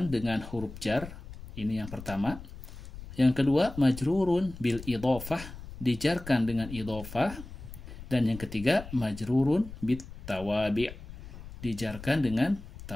dengan huruf jar, ini yang pertama. Yang kedua, majrurun bil idhofah, dijarkan dengan idhofah. Dan yang ketiga, majrurun bit tawabi', dijarkan dengan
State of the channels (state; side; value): noise; left; rumble, 14 dB below the sound